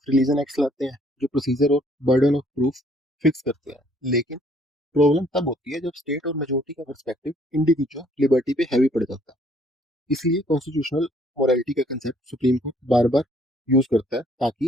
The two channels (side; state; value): both; normal; correlation 0.63